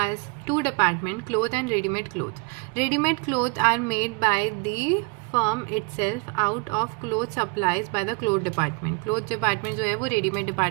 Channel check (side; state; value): left; quieter; 32.5 dB